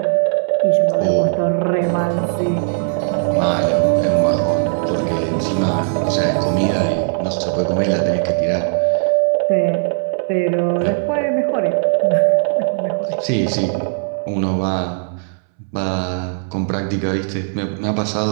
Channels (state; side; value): silent; left; 66 dB below the other